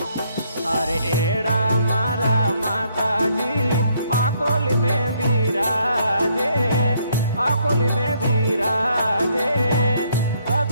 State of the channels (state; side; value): inverted; both; correlation -0.69